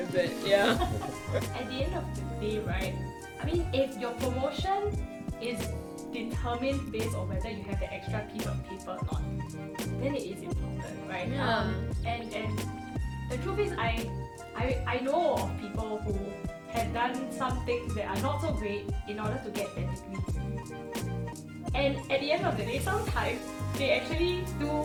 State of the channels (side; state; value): both; identical; correlation 1.00